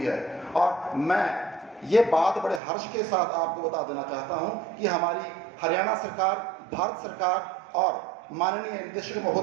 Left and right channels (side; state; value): left; drops out; at 2.6 s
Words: है। और मैं ये बात बड़े हर्ष के साथ आपको बता देना चाहता हूं कि हमारी हरियाणा सरकार, भारत सरकार और माननीय निदेशक